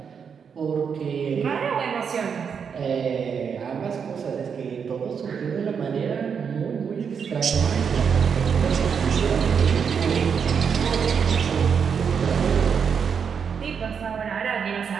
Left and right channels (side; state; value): left; quieter; 6.7 dB